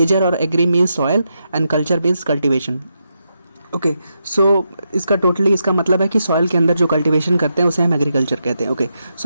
और agri means soil and culture means cultivation. Okay, so इसका मतलब है कि सॉइल के अंदर जो कल्टीवेशन करते हैं उसे हम एग्रीकल्चर कहते हैं। Okay,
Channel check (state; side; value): inverted; both; correlation -0.84